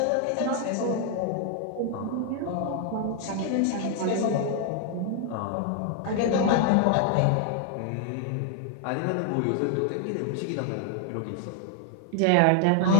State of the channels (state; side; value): different; both; correlation 0.00